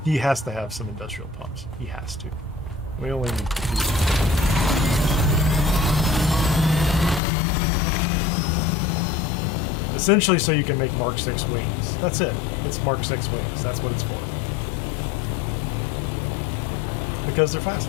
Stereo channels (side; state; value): right; drops out; at 7.2 s